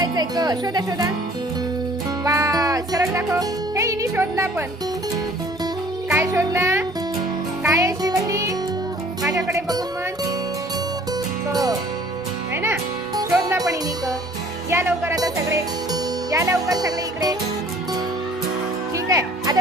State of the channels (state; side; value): normal; both; correlation 0.53